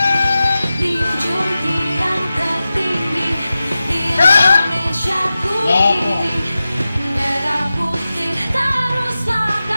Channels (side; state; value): both; inverted; correlation -0.94